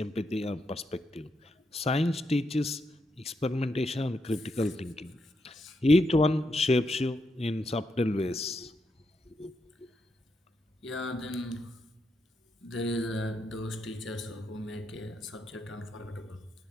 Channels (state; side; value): normal; both; correlation 0.81